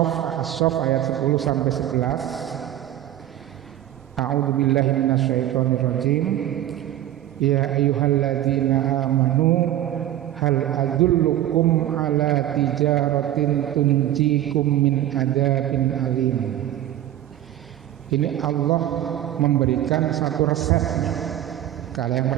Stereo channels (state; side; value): quieter; left; 12.9 dB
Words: ayat 10 sampai 11. A'udzubillahi minasyaitonirrajim. Ya ayyuhalladzina amanu hal adullukum ala tijaratin tunjikum min adzabin alim. Ini Allah memberikan satu resepnya. Kalau yang